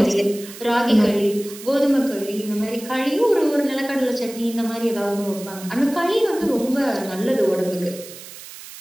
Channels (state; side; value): noise; right; hiss, 15 dB below the sound